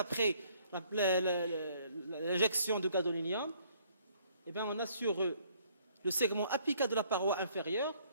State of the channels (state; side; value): inverted; both; correlation -0.63